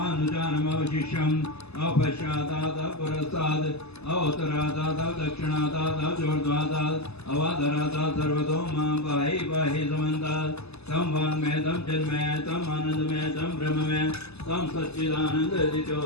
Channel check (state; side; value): late; right; 0.79 ms